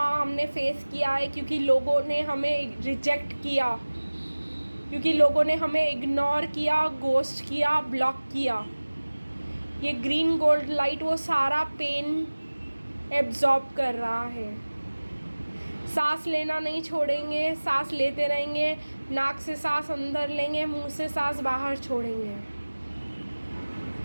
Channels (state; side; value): inverted; both; correlation -1.00